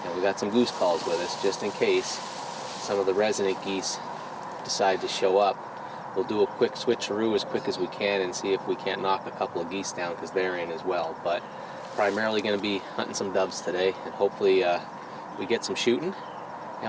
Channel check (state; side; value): identical; both; correlation 1.00